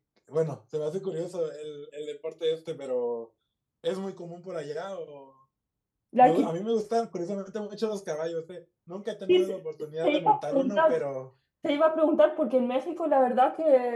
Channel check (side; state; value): both; identical; correlation 1.00